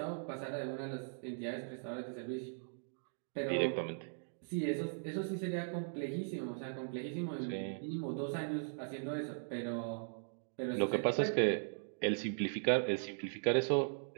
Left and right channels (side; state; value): left; silent; digital silence